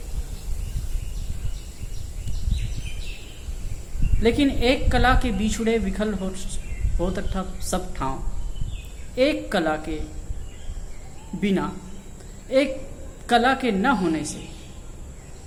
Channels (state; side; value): identical; both; correlation 1.00